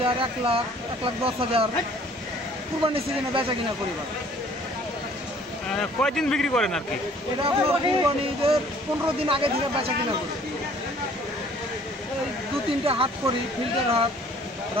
1 লাখ, 1,10,000 কুরবানি সিজনে বেচা কিনা করি। কয়দিন বিক্রি করেন আর কি? এটা আপনার কুরবানি ঈদের 15 দিন আগে থেকে বেচা কিনা করি। এই 2-3টে হাট করি, ফিল্ডের হাট,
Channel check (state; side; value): normal; both; correlation 0.55